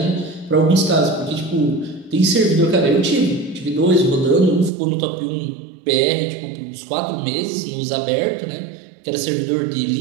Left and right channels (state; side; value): drops out; left; at 4.7 s